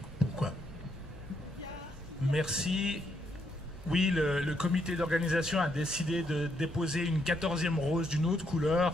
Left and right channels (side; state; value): both; normal; correlation 0.76